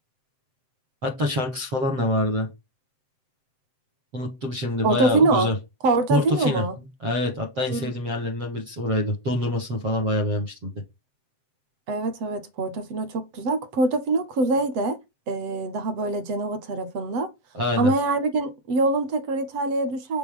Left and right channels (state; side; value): late; left; 7.7 ms